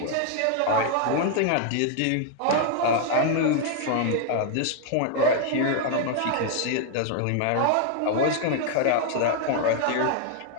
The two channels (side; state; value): both; different; correlation 0.00